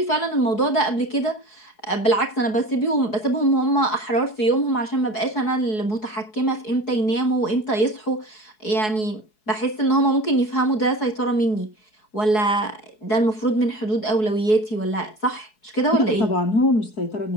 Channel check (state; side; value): late; right; 4.7 ms